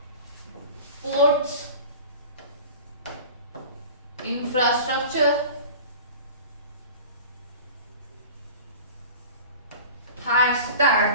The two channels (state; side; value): inverted; both; correlation -0.38